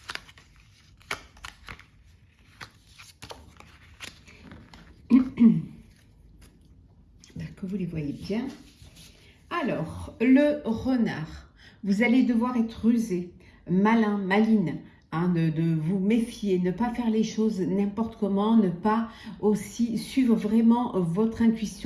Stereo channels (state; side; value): identical; both; correlation 1.00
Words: Que vous les voyez bien. Alors, le renard, vous allez devoir être rusé, malin, maline, hein, de vous méfier, ne pas faire les choses n'importe comment, ne pas aussi suivre vraiment votre